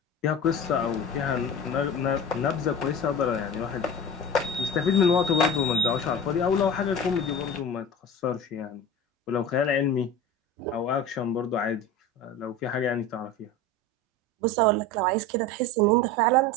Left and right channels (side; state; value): both; normal; correlation 0.33